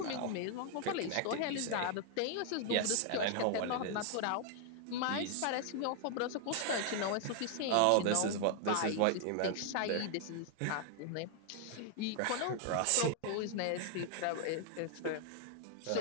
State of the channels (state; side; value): different; both; correlation 0.00